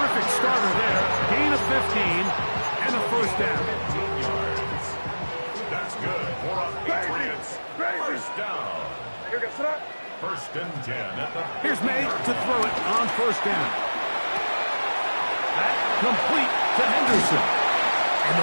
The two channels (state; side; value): inverted; both; correlation -1.00